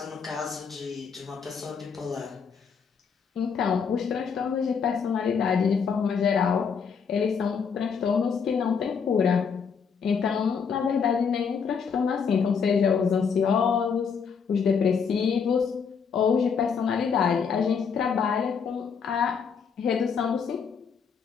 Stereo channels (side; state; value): right; quieter; 6.3 dB